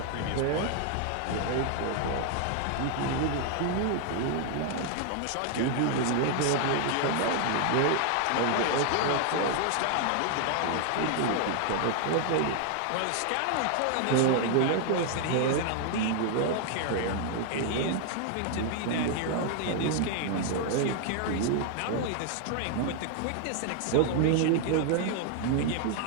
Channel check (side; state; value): both; different; correlation 0.00